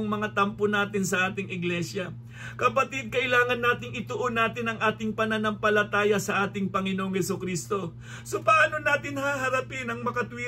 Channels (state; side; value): identical; both; correlation 1.00